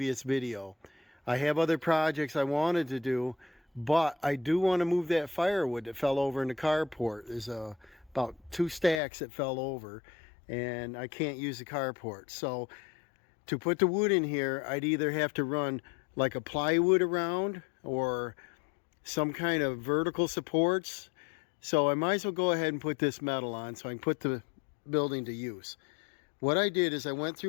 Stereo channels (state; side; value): drops out; right; at 9.0 s